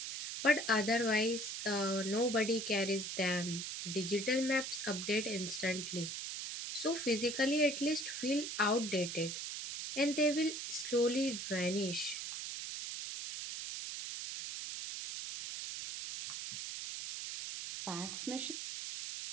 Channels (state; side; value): noise; right; hiss, 5 dB below the sound